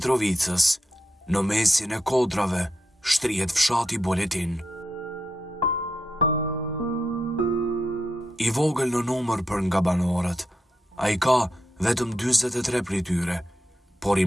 në mesin e kodrave, shtrihet fshati Boletin. I vogël në numër për nga banorët, a i ka vetëm 43 prej tyre, por i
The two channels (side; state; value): both; normal; correlation 0.84